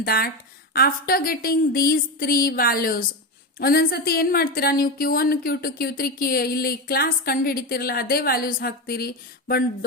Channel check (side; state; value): both; normal; correlation 0.16